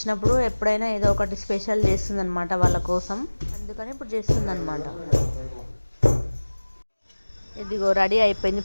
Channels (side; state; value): both; inverted; correlation -1.00